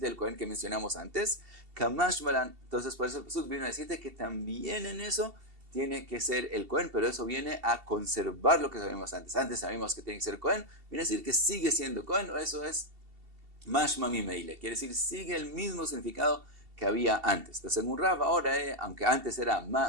el Cohen que mencionamos antes. Kamash Malan. Entonces por eso el Pasuk vino a decirte que también en eso tiene que ser el Cohen, pero eso viene a conservar lo que sabíamos antes. Antes sabíamos que tiene que ser Cohen, viene a decir que sigue siendo Cohen, eso es mashma mimeile, quiere decir sigue el mismo significado que había antes. Entonces, según Rav, ahora aunque antes era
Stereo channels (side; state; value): left; late; 2.7 ms